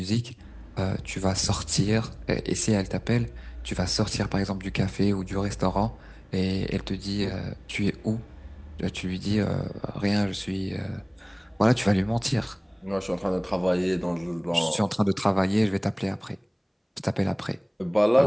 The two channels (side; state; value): both; identical; correlation 1.00